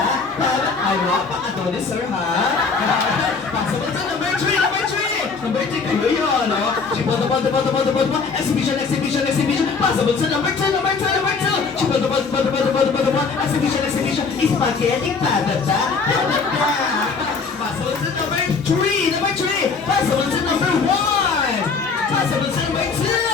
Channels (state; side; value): quieter; right; 4.9 dB